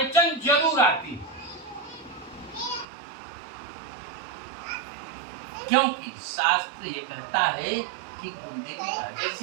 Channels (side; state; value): left; drops out; at 2.9 s